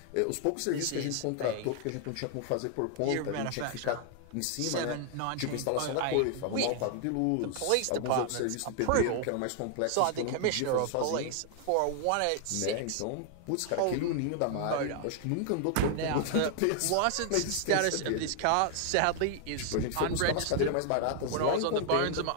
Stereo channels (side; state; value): both; different; correlation 0.00